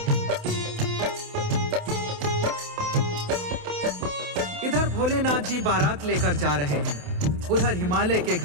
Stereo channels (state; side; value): late; left; 28 ms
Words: इधर भोलेनाथ जी बारात लेकर जा रहे हैं, उधर हिमालय के